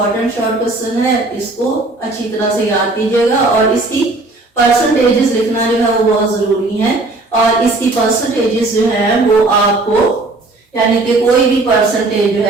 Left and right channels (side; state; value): left; quieter; 3.1 dB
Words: शॉर्ट क्वेश्चन है, इसको अच्छी तरह से याद कीजिएगा और इसकी परसेंटेजेस लिखना जो है वो बहुत जरूरी है। और इसकी परसेंटेजेस जो है वो आपको यानी कि कोई भी परसेंटेज जो